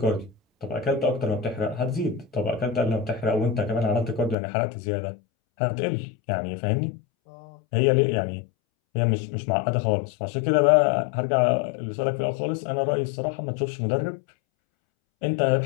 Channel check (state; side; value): drops out; right; at 4.4 s